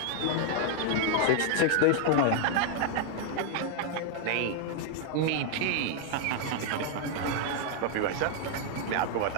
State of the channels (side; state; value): both; different; correlation 0.00